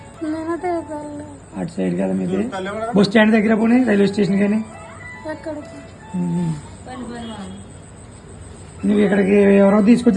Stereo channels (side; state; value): both; identical; correlation 1.00